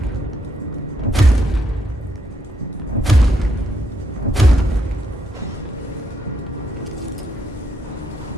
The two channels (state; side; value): normal; both; correlation 0.76